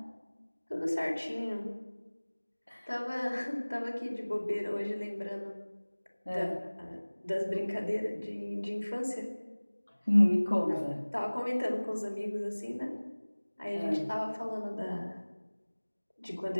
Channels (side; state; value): both; inverted; correlation -1.00